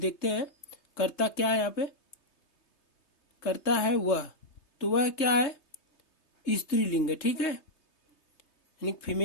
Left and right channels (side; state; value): right; late; 3.3 ms